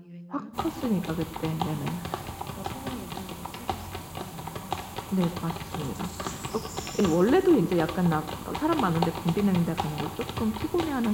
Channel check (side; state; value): both; identical; correlation 1.00